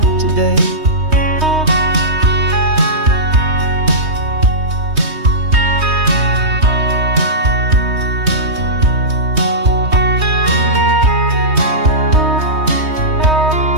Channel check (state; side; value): late; left; 3.2 ms